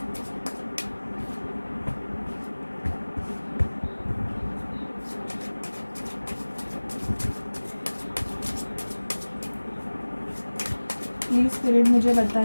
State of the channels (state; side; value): inverted; both; correlation -1.00